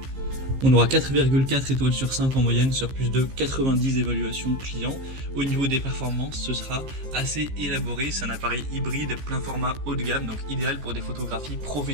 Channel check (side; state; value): left; late; 15 ms